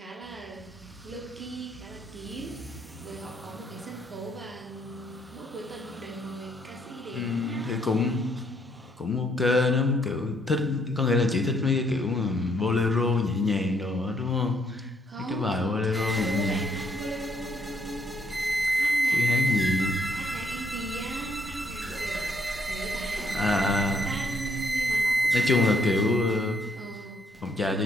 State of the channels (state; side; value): normal; both; correlation 0.70